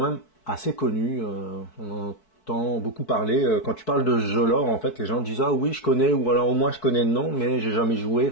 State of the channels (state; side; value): late; right; 4.6 ms